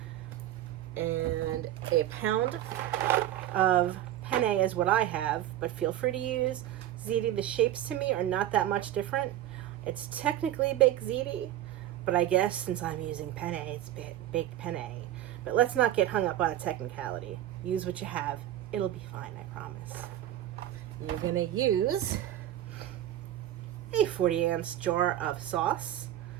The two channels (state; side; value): quieter; left; 12.6 dB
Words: And a pound of penne is what I have, but feel free to use ziti. The shapes to me are not that much different. It's technically baked ziti, but I guess since I'm using penne, it's baked penne. But let's not get hung up on a technicality. Use what you have. It'll be fine, I promise. You're going to use a 40-ounce jar of sauce,